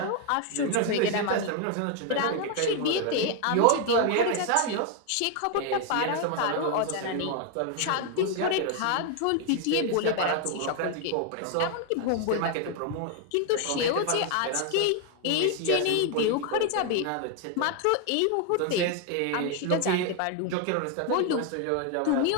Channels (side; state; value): both; different; correlation 0.01